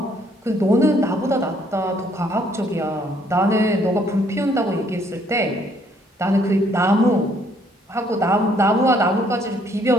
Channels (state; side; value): normal; both; correlation 0.66